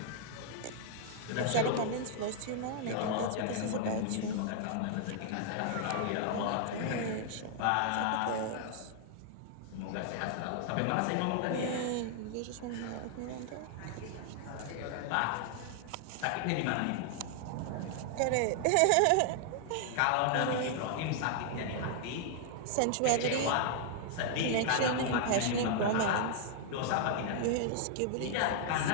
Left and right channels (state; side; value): different; both; correlation -0.01